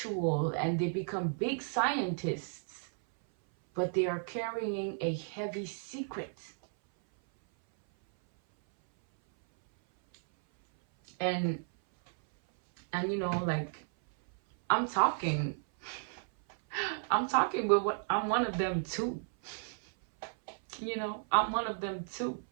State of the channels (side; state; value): left; silent; 55 dB below the other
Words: and they become big scientists, but they are carrying a heavy secret. And you know, like, I'm talking with what I'm one of them too. You know, I'm one of them too.